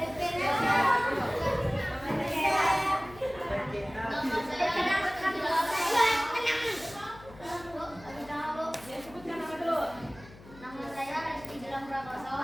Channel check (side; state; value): left; noise; hum, 20 dB below the sound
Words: Ya, sebutkan nama dulu. Nama saya Reski Gilang Prakoso.